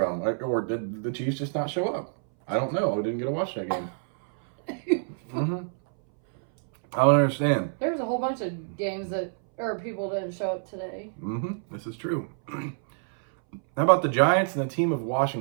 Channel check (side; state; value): left; silent; 60 dB below the other